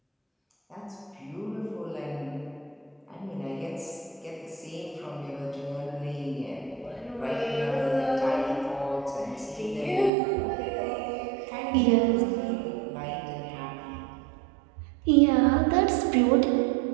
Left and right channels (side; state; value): left; drops out; at 10.1 s